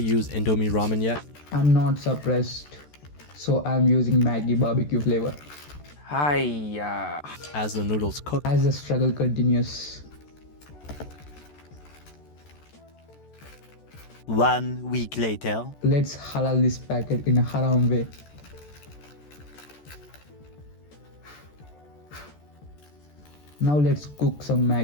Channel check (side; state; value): right; late; 14 ms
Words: use Indomie ramen yet. I'm not surprised, so I'm using Maggi barbecue flavor. Hiya. As the noodles cook, As the struggle continues. 1 week later. Let's halal this packet in a haram way. Now let's cook some